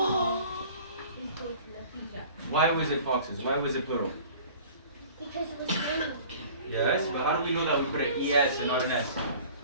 Why was it foxes? Why was it plural? because it was funny. Yes, but how do we know that we put an ES and not an S?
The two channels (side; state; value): both; inverted; correlation -0.46